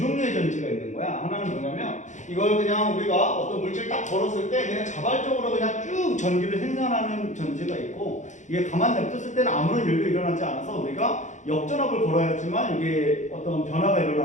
전지가 있는 거야. 하나는 뭐냐면 이걸 그냥 우리가 어떤 물질 딱 걸었을 때 그냥 자발적으로 그냥 쭉 전기를 생산하는 전지가 있고, 이게 가만 냅뒀을 때는 아무런 일도 일어나지 않아서 우리가 역전압을 걸어야지만 이게 어떤 변화가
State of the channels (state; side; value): late; right; 0.35 ms